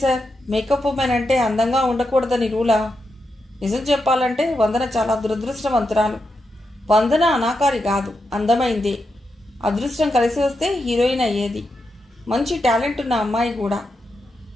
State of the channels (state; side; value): normal; both; correlation 0.86